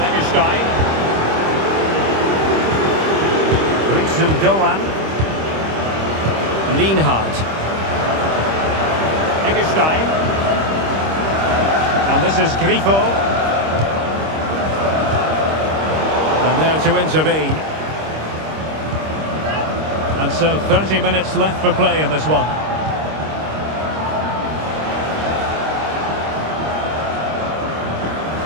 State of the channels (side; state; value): left; late; 26 ms